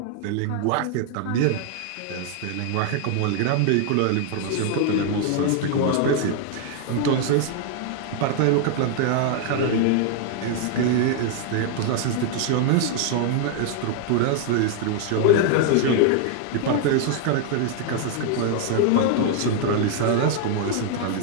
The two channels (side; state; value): both; different; correlation 0.00